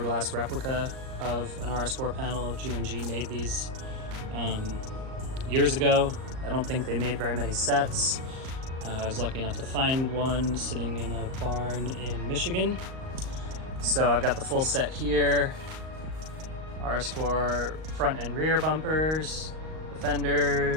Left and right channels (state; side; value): late; left; 38 ms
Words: replica of an RS4 panel. GMG made these years ago. I don't think they made very many sets. I was lucky enough to find one sitting in a barn in Michigan. So I've got the full set here. RS4 front and rear bumpers, the